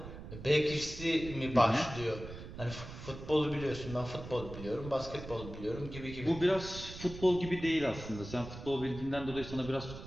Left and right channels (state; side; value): noise; right; rumble, 12 dB below the sound